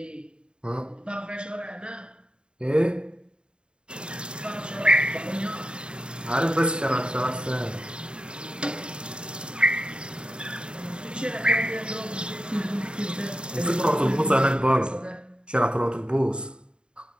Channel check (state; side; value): late; left; 0.051 ms